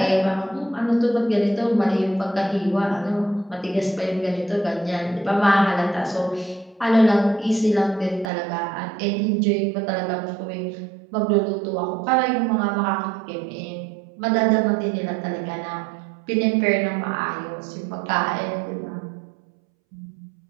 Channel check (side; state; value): left; drops out; at 8.3 s